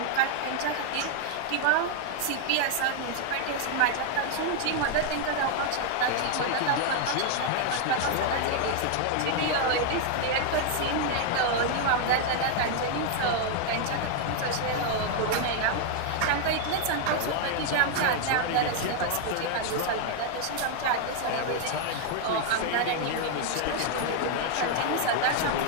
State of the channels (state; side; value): different; both; correlation 0.00